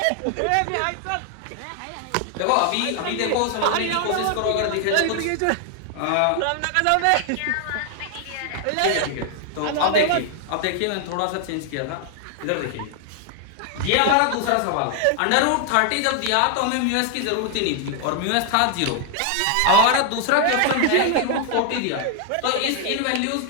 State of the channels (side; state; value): both; different; correlation 0.00